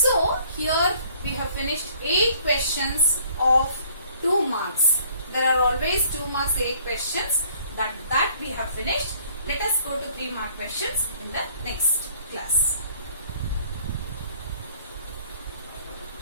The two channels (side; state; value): both; inverted; correlation -0.58